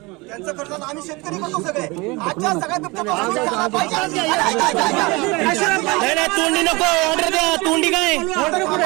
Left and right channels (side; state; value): left; quieter; 24.7 dB